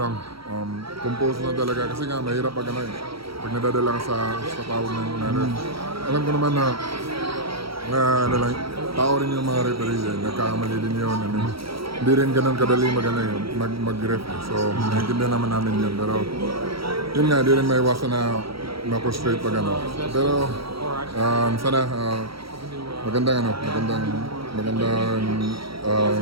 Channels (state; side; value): late; left; 0.75 ms